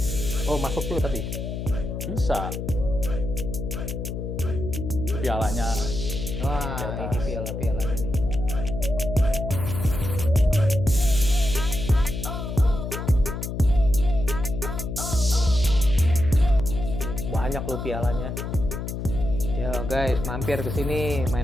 Oh, masuk tuh tapi. Bisa. Pialanya. Wah, ini piala-pialanya nih. Banyak loh pialanya. Yo guys, mampir ke sini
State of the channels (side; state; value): left; noise; hum, 5 dB below the sound